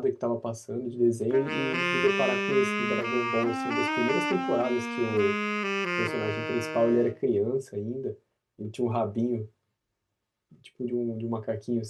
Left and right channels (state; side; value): identical; both; correlation 1.00